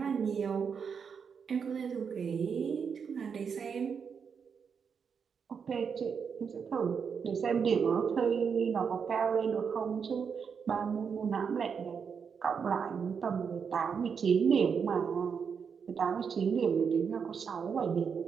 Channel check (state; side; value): quieter; left; 6.4 dB